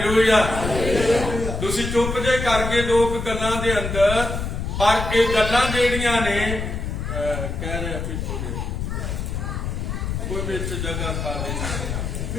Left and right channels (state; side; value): noise; left; rumble, 4 dB below the sound